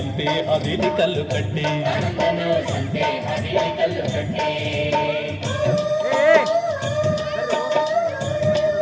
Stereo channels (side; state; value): both; identical; correlation 1.00